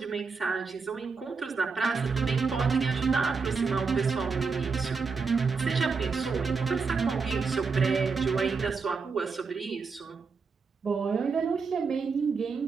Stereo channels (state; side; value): quieter; left; 4.9 dB